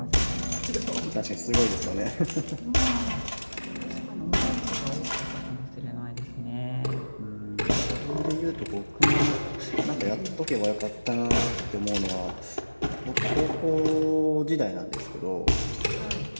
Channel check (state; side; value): inverted; both; correlation -1.00